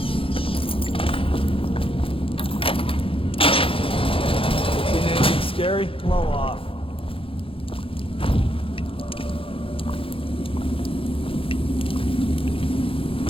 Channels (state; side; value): late; right; 0.26 ms